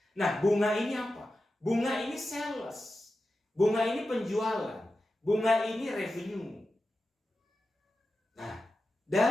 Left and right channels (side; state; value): both; normal; correlation 0.92